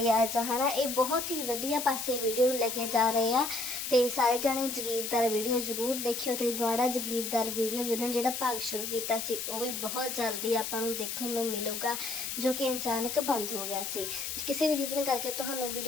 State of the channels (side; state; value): left; noise; hiss, 4 dB below the sound